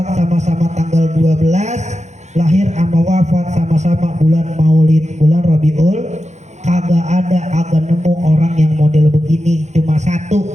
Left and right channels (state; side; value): late; left; 0.33 ms